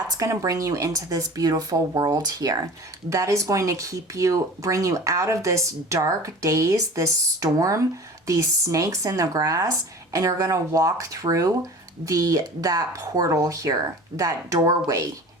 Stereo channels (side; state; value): both; normal; correlation 0.39